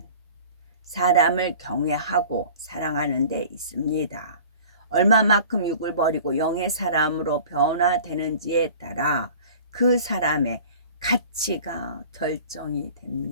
사람을 경외하고 사랑하는 데 있습니다. 얼마만큼 육을 버리고 영의 사람으로 변화되는지에 따라 그 사람의 가치가 결정이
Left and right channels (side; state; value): both; inverted; correlation -0.44